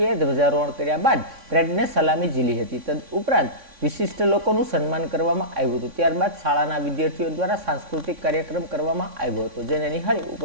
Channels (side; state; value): left; late; 3.6 ms